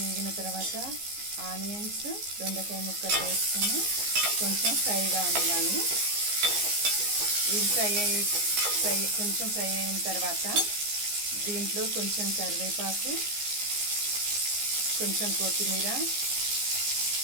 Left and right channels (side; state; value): left; late; 14 ms